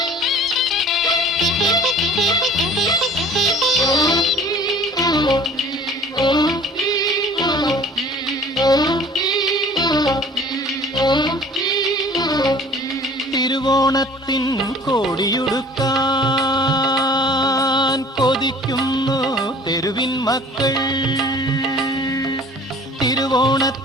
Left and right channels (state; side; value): normal; both; correlation 0.48